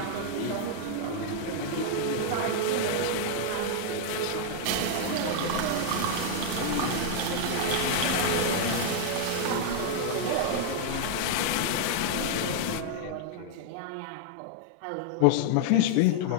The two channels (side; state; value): both; different; correlation 0.00